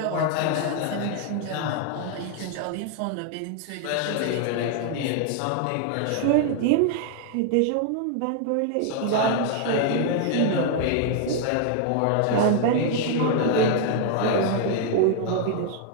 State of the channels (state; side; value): different; both; correlation 0.00